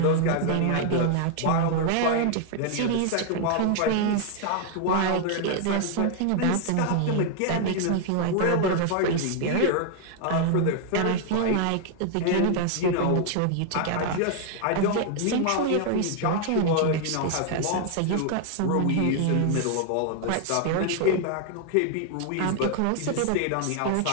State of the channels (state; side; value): different; both; correlation 0.00